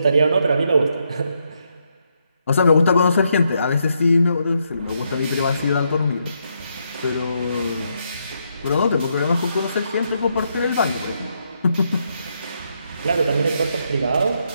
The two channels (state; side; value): inverted; both; correlation -0.78